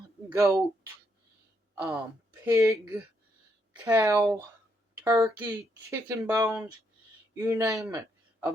goat, pig, cow, turkey, chicken bones, you name it.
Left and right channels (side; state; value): both; normal; correlation 0.76